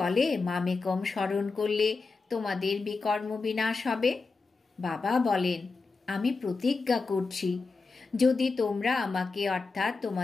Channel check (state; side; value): quieter; right; 4.1 dB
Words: মামেকম স্মরণ করলে তোমাদের বিকর্ম বিনাশ হবে? বাবা বলেন, আমি প্রতিজ্ঞা করছি, যদি তোমরা আমাকে অর্থাৎ